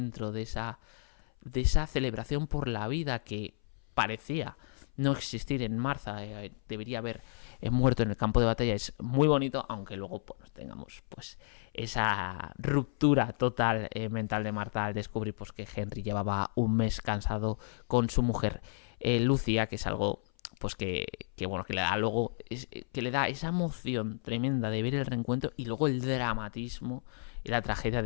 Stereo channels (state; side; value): silent; right; 56 dB below the other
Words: de esa celebración por la vida que parecía no existir en Martha, debería haber muerto en el campo de batalla, es muy bonito, aunque luego pues, tengamos pues esa ruptura total mental de Martha al descubrir pues, que Henry llevaba un mes cansado con su mujer Lucia, que es algo pues que bueno, que le da luego que le da esa emoción tremenda de ver el reencuentro, y luego el dramatismo y la tragedia